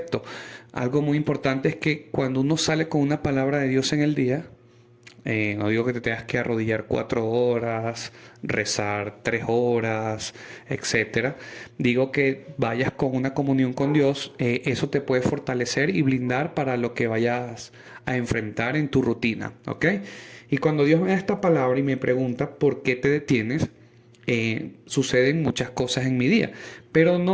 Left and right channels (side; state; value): both; identical; correlation 1.00